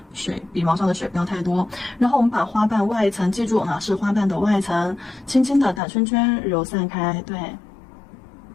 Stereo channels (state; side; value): drops out; right; at 5.8 s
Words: 水，笔毛上的水不要太多。然后我们把花瓣外层，记住啊，是花瓣的外层，轻轻的打圈圈揉散开，对。